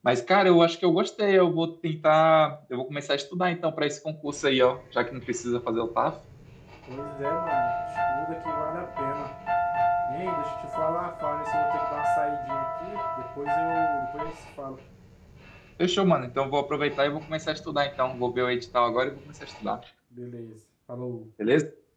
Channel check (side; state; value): both; identical; correlation 1.00